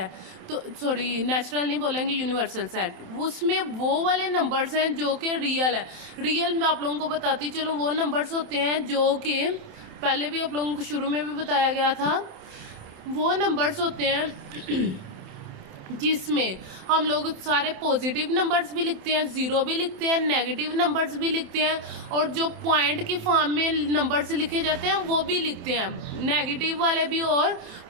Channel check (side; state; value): left; late; 27 ms